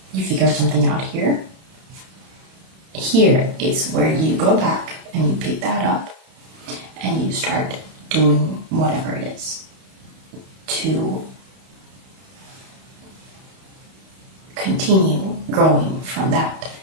you figured something out here. Here is where you go back and you pick that up and you start doing whatever it is to continue growing from that.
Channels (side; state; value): left; late; 31 ms